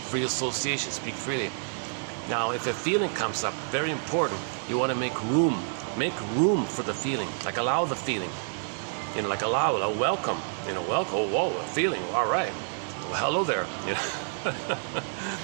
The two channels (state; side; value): silent; left; 59 dB below the other